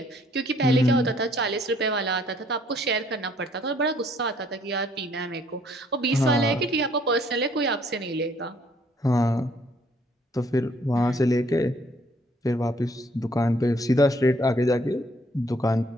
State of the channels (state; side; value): normal; both; correlation 0.63